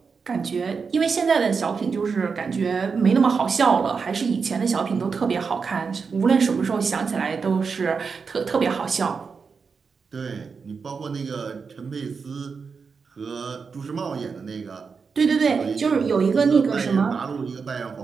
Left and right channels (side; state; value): left; quieter; 5.3 dB